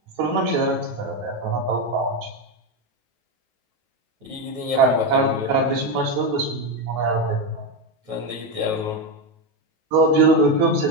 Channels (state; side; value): late; left; 9.3 ms